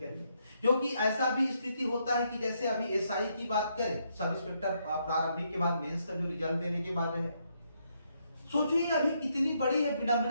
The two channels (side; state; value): both; inverted; correlation -0.76